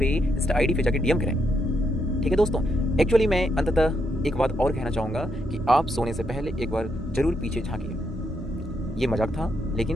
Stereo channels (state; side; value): normal; both; correlation 0.78